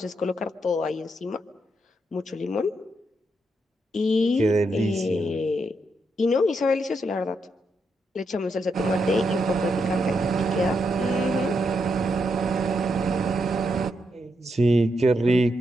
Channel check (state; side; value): normal; both; correlation 0.81